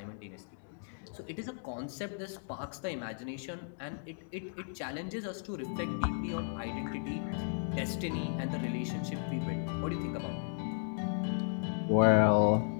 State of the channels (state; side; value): silent; right; digital silence